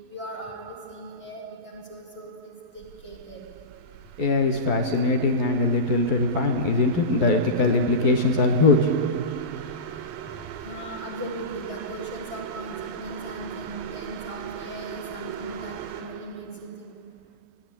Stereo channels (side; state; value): left; late; 11 ms